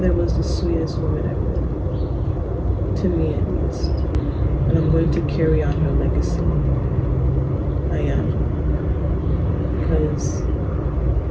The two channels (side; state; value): both; identical; correlation 1.00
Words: was the sweetest woman ever. To me, at least. And I'm going to carry on her legacy. I am. Because